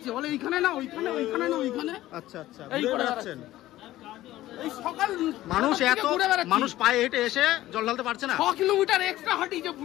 বলে এইখানে না ওইখানে, ওইখানে না ওইখানে। আচ্ছা আচ্ছা, এই করে বেড়াচ্ছেন। এই সকাল মানুষ পায়ে হেঁটে এসে জল ঢালতে পারছে না। 6 কিলোমিটার এক্সট্রা হাঁটিয়েছে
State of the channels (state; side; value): quieter; right; 15.3 dB